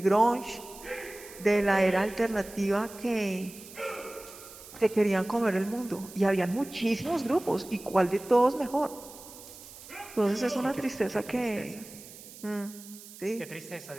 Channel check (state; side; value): noise; right; hiss, 17 dB below the sound